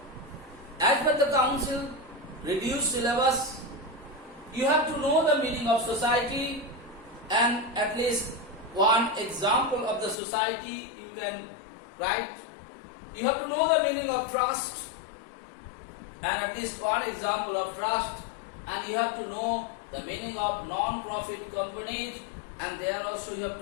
as per the council reduced syllabus, you have to know the meaning of society and at least one example of the society you can write. You have to know the meaning of trust and at least one example of trust, and you have to know the meaning of non-profit companies, and there also you have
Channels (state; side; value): drops out; right; at 10.2 s